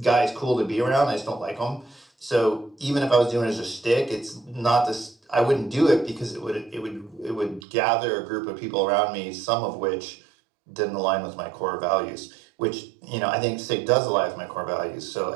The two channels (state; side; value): drops out; left; at 7.6 s